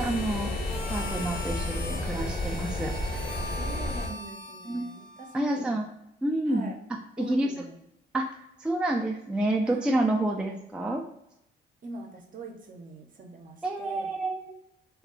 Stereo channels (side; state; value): both; normal; correlation 0.76